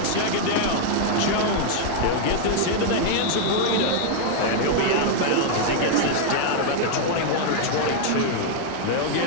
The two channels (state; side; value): different; both; correlation 0.00